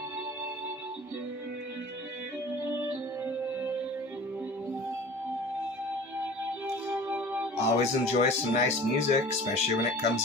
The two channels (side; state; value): both; normal; correlation 0.42